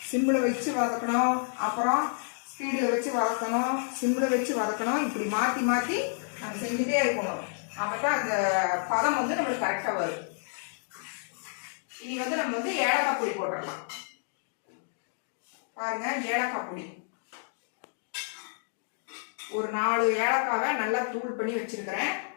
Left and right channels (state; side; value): silent; right; digital silence